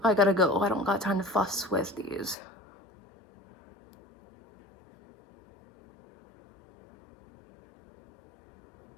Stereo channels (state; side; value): drops out; right; at 2.4 s